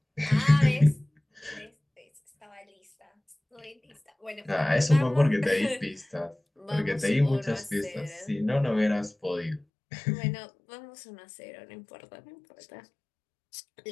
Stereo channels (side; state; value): right; drops out; at 9.7 s